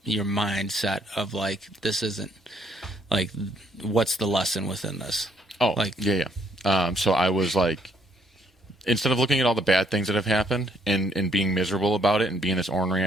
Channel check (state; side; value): normal; both; correlation 0.68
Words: mindset of like, this isn't like, what's the lesson within this? Oh, like, yeah. So I was like, instead of looking at all the bad things that have happened and being miserable about it and being this ornery